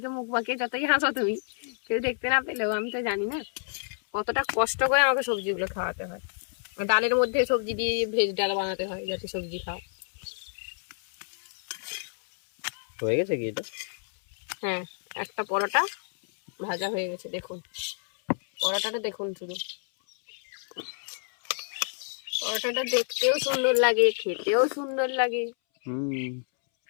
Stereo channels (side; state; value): right; silent; 59 dB below the other